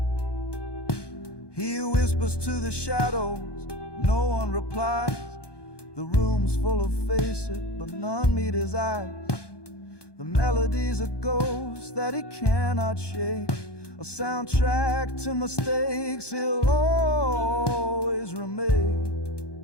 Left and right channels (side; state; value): right; late; 1.2 ms